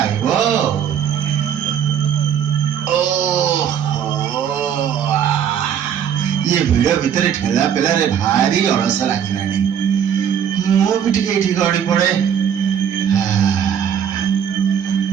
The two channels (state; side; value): quieter; left; 8.6 dB